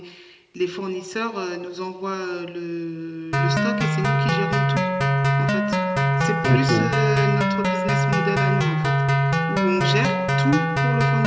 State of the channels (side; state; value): both; identical; correlation 1.00